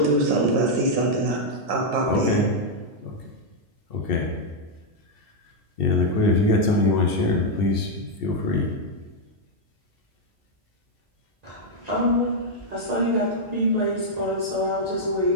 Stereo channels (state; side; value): normal; both; correlation -0.02